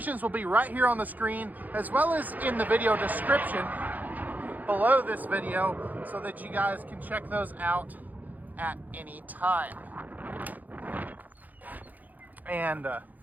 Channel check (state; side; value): late; left; 0.082 ms